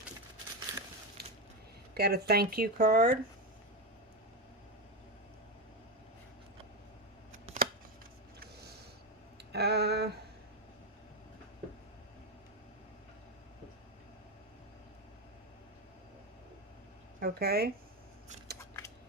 Got a thank you card. Okay.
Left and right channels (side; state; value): both; normal; correlation 0.12